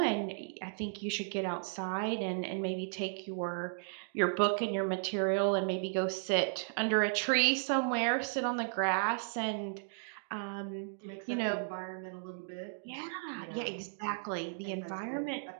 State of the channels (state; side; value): silent; left; digital silence